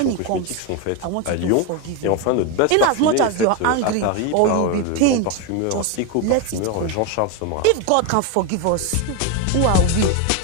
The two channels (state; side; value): different; both; correlation 0.02